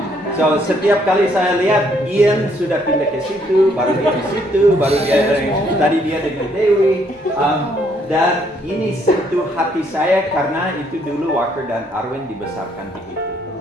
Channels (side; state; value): both; normal; correlation 0.68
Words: So setiap kali saya lihat Ian sudah pindah ke situ, baru dia ke situ, baru dia tadi dia dengan Dewi. Dan ini sentuh hati saya karena itu dulu Walker dan Arwen dibesarkan begitu.